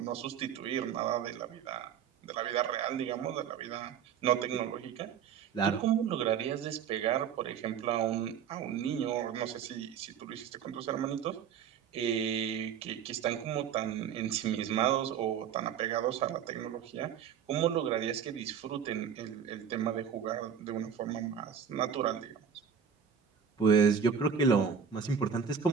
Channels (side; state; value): left; quieter; 7.6 dB